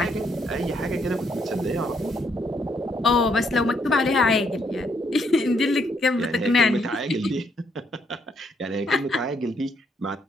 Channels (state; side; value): normal; both; correlation 0.72